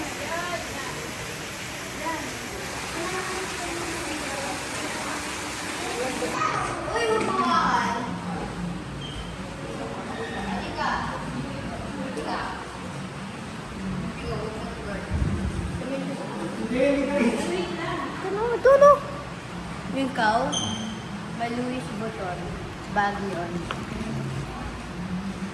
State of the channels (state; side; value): identical; both; correlation 1.00